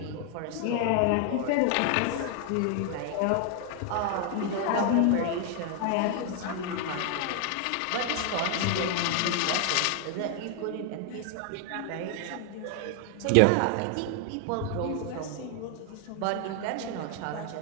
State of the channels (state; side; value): different; both; correlation 0.00